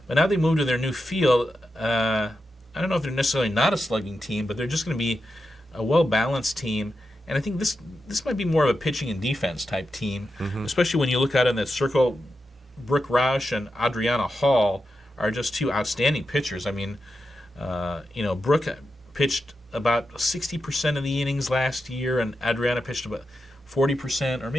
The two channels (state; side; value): normal; both; correlation 0.88